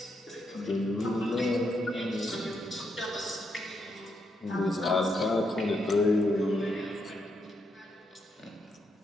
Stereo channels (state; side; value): normal; both; correlation 0.79